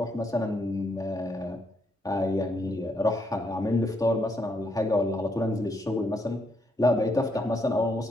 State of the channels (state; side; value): normal; both; correlation 0.75